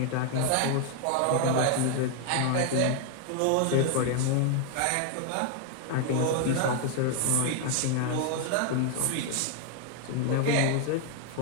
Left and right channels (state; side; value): different; both; correlation 0.00